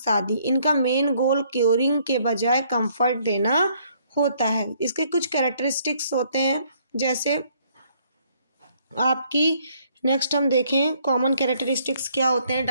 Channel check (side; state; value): both; inverted; correlation -0.66